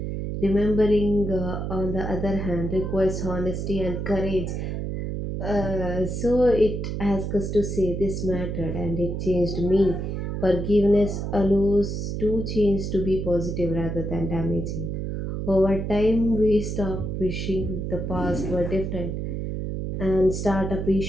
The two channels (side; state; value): right; noise; hum, 3 dB below the sound